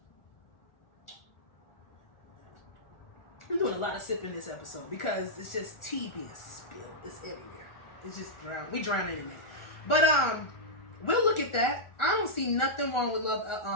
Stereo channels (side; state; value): right; late; 1.4 ms